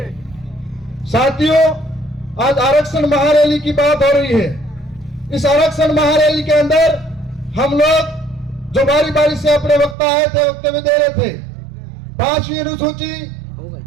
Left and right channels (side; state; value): left; drops out; at 10.0 s